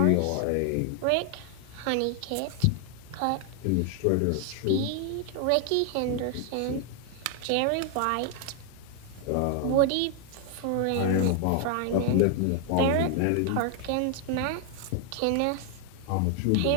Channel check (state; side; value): different; both; correlation 0.00